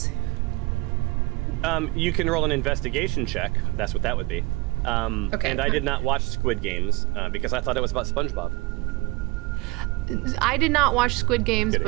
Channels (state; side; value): quieter; left; 23.9 dB